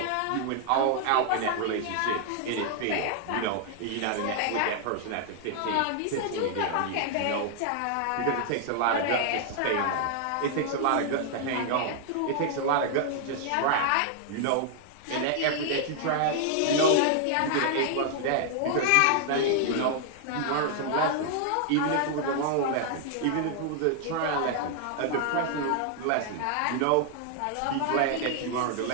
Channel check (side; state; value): both; different; correlation 0.00